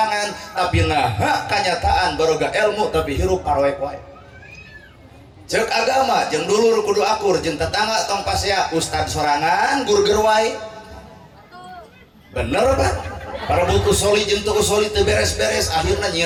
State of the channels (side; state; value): both; identical; correlation 1.00